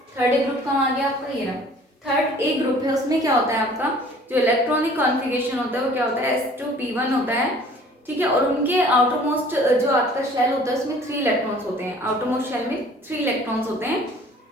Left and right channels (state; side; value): normal; both; correlation 0.51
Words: थर्ड ए ग्रुप कहाँ आ गया आपका, ये रहा थर्ड ए ग्रुप है। उसमें क्या होता है आपका जो इलेक्ट्रॉनिक कॉन्फ़िगरेशन होता है वो क्या होता है, S2P1 होता है। ठीक है, और उनके आउटर मोस्ट जो आपका शेल होता है उसमें 3 इलेक्ट्रॉन्स होते हैं। आउटर मोस्ट शेल में 3 इलेक्ट्रॉन्स होते हैं।